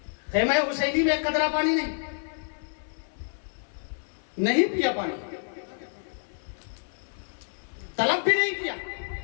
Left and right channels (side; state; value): right; silent; 59 dB below the other